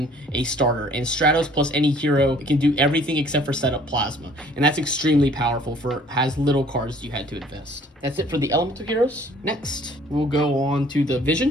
a starter. And Stratos plus any hero can do everything except for set up Plasma. And that's extremely powerful has little cards you had to invest. That's it for the elemental heroes. Next, we'll go on to the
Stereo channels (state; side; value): normal; both; correlation 0.56